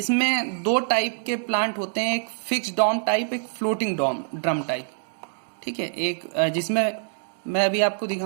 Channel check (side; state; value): left; silent; 62 dB below the other